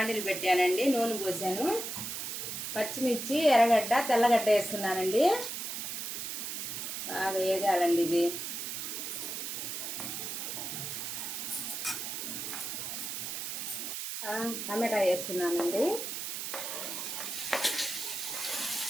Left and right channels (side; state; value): right; noise; hiss, 4 dB below the sound